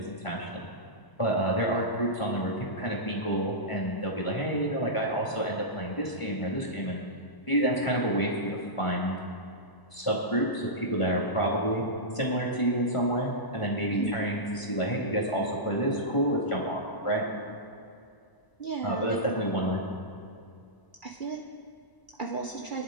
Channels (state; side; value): late; right; 1.0 ms